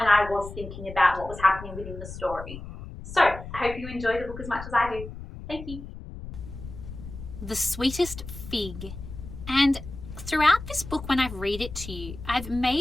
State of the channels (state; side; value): noise; left; rumble, 11 dB below the sound